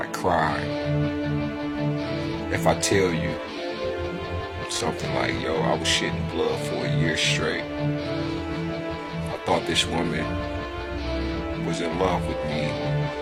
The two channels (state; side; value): identical; both; correlation 1.00